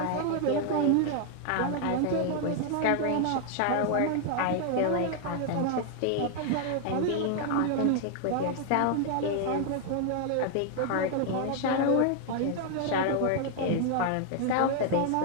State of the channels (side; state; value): both; different; correlation 0.00